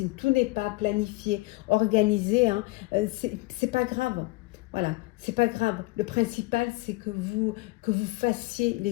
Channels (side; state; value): right; quieter; 22.3 dB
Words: tout n'est pas planifié, organisé, hein, c'est pas grave. Voilà, c'est pas grave. Le principal, c'est que vous fassiez